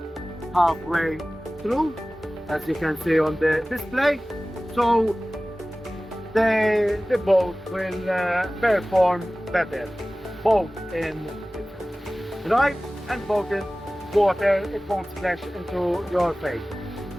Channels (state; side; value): normal; both; correlation 0.97